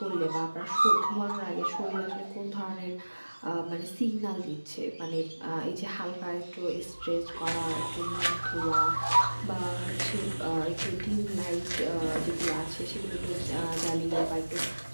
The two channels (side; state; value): both; inverted; correlation -1.00